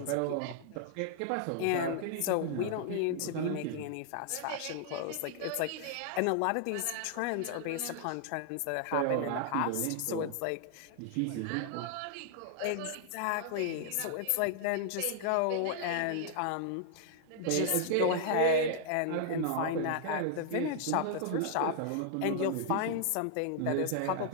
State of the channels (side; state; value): both; different; correlation -0.01